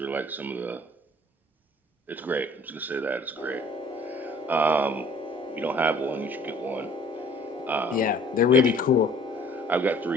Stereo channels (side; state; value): both; normal; correlation 0.53